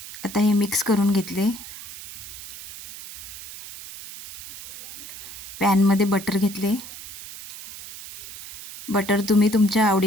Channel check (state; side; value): noise; right; hiss, 14 dB below the sound